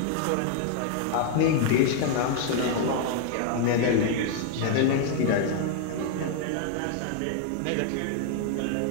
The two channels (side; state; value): both; different; correlation 0.00